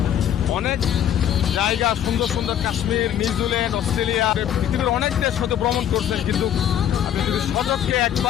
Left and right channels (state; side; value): quieter; right; 10.2 dB